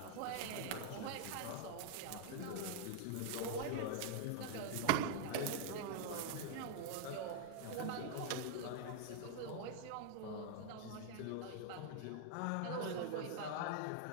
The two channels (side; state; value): both; different; correlation 0.00